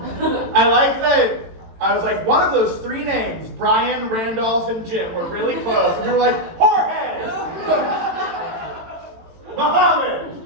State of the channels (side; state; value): left; late; 18 ms